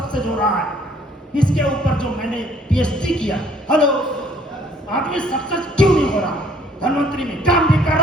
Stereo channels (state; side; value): normal; both; correlation 0.60